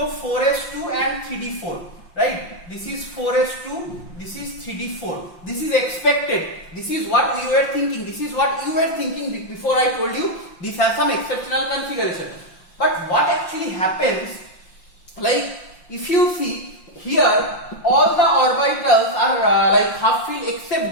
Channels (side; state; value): right; late; 5.7 ms